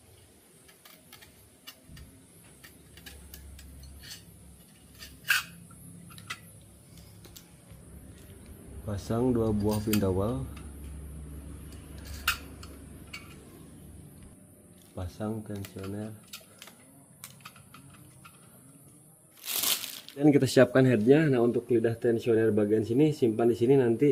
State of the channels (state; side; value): identical; both; correlation 1.00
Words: Pasang 2 buah pin dowel. Pasang tensioner. Dan kita siapkan headnya. Nah, untuk lidah tensioner bagian sini simpan di sini, nanti